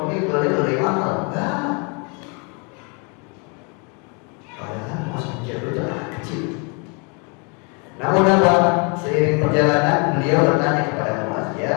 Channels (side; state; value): right; quieter; 33.8 dB